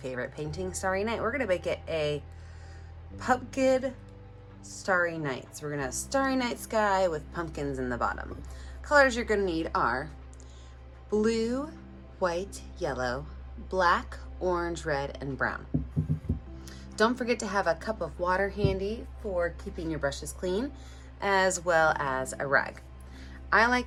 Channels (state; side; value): identical; both; correlation 1.00